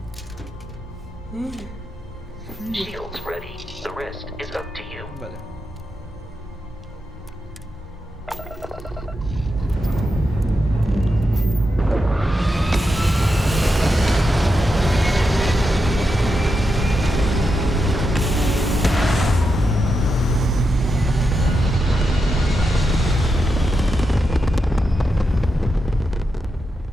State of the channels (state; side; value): normal; both; correlation 0.86